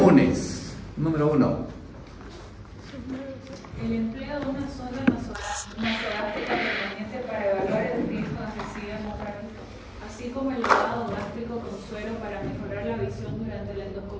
Número 1. El empleo de una sonda nasogástrica permanente para evaluar el riesgo de suicidio hemorrágico, así como el lavado gástrico con suero para mejorar la visión durante la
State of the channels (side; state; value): both; identical; correlation 1.00